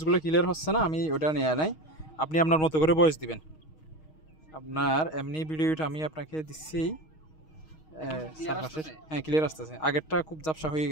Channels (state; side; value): late; right; 6.4 ms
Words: ক্লিয়ার হচ্ছে না, আমি ওটা নিয়ে নাই, আপনি আপনার মতো করে ভয়েস দিবেন। আপনার এমনি ভিডিওটা আমি আপনাকে দিচ্ছি, হ্যাঁ ক্লিয়ার আসতেছে, আগেরটা খুব ঝাপসা হয়ে